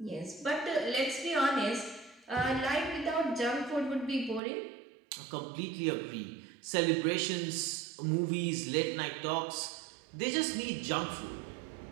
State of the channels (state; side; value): drops out; left; at 4.4 s